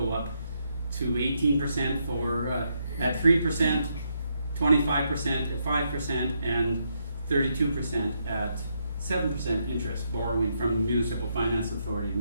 up to 18% for at 3%, 25% at 5%, and 32% at 7% interest, borrowing from the Municipal Finance Authority, and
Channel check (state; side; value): inverted; both; correlation -0.78